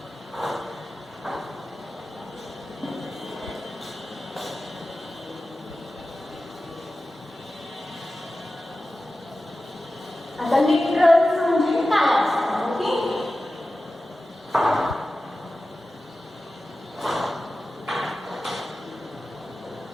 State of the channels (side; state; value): both; normal; correlation 0.94